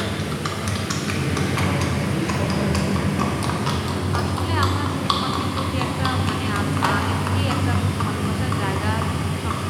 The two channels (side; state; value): both; identical; correlation 1.00